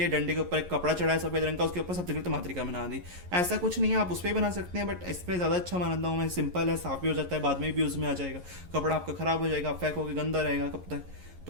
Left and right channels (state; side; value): late; left; 11 ms